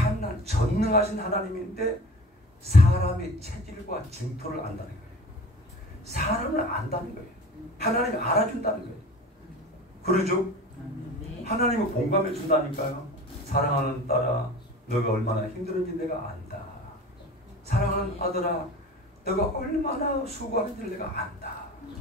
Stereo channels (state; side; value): normal; both; correlation 0.39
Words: 전능하신 하나님인데 사람의 체질과 징토를 안다는 거예요. 사람을 안다는 거예요. 하나님이 알아준다는 거예요. 그러죠? 하나님은 공감해 준다니까요. 사랑하는 딸아, 너가 얼마나 힘들은지 내가 안다. 사랑하는 아들아, 너가 얼마나 수고하는지 내가 안다.